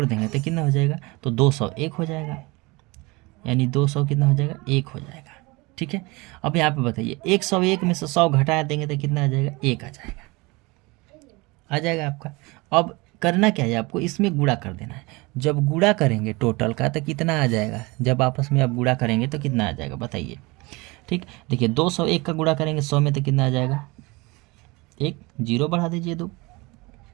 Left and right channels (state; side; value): quieter; left; 24.6 dB